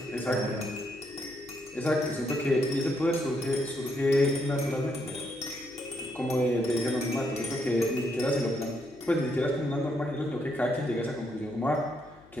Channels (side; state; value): left; noise; hum, 25 dB below the sound